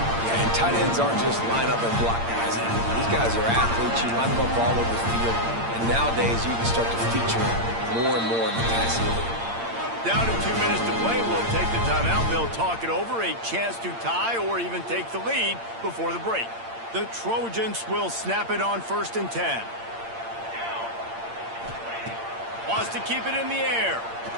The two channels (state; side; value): late; left; 8.7 ms